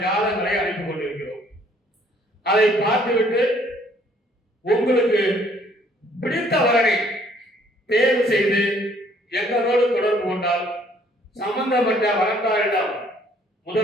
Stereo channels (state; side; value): normal; both; correlation 0.62